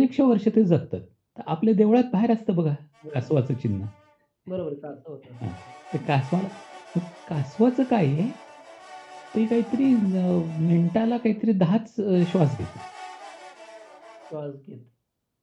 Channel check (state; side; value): identical; both; correlation 1.00